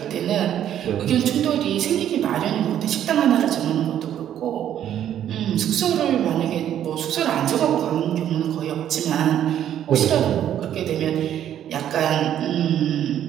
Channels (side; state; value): left; quieter; 10.6 dB